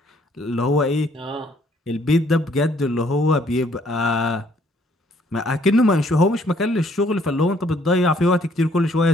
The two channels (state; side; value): normal; both; correlation 0.64